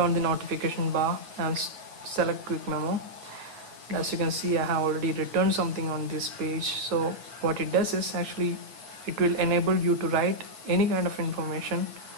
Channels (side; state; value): left; late; 8.8 ms